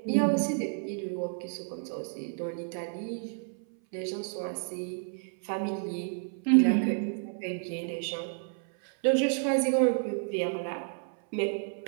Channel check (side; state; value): left; silent; 57 dB below the other